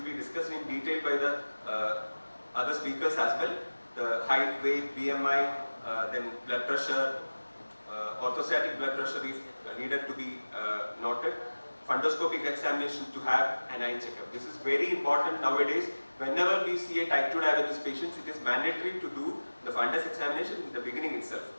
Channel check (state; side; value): inverted; both; correlation -1.00